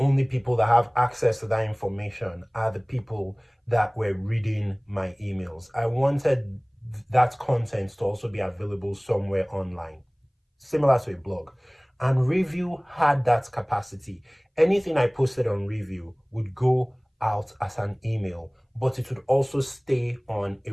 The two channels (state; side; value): identical; both; correlation 1.00